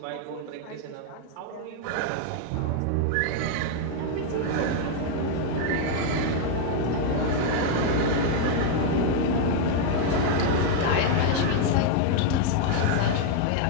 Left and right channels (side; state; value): both; different; correlation 0.00